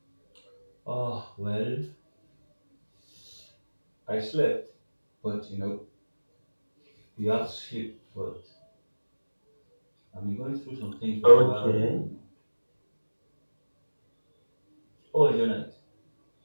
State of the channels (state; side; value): inverted; both; correlation -1.00